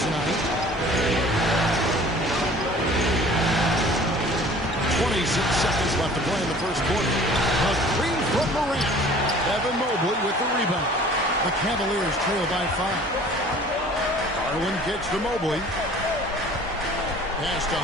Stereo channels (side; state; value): both; normal; correlation 0.48